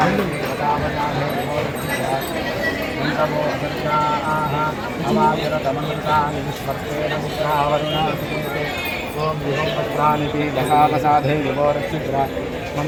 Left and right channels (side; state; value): both; identical; correlation 1.00